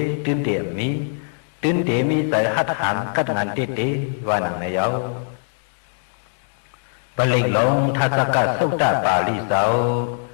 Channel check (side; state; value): right; silent; digital silence